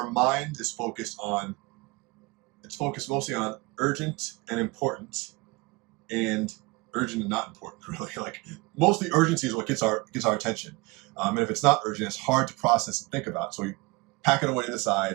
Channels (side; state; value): left; quieter; 25.1 dB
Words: mind is focused mostly on urgent and important, and urgent and not important, really. Like, mostly urgency is what gets our attention. And if it's not urgent, it's hard to process and think about. So we pack it away to the